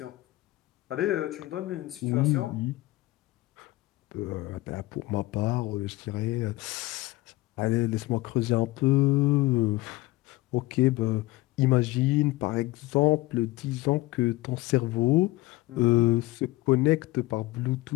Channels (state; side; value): quieter; right; 19.2 dB